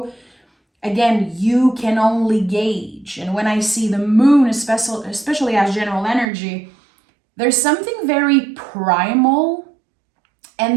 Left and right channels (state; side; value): drops out; left; at 6.2 s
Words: Again, you can only gauge. And when I see the moon, especially as general energy, there's something very primal,